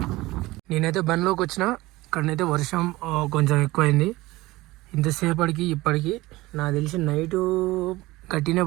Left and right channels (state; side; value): quieter; left; 19.3 dB